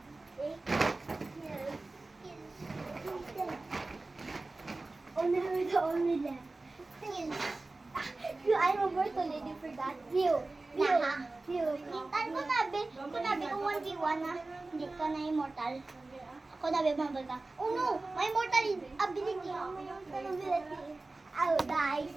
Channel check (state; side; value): quieter; left; 3.2 dB